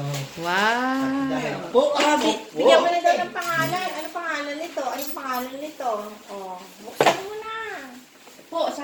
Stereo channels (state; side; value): identical; both; correlation 1.00